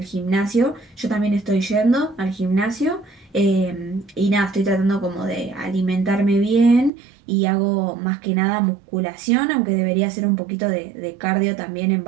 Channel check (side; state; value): left; drops out; at 6.9 s